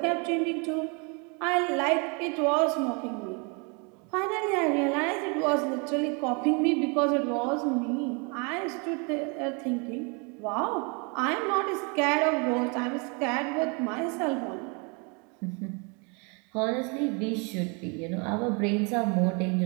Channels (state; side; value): quieter; left; 33.1 dB